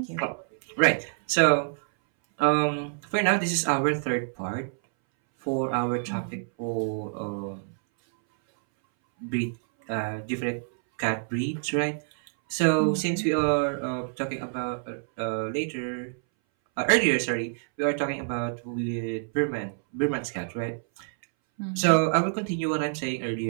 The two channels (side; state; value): left; silent; 60 dB below the other